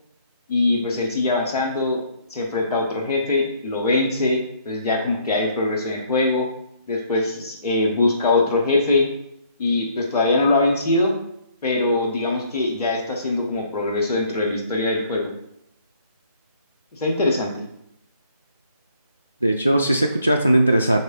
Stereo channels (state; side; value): inverted; both; correlation -0.64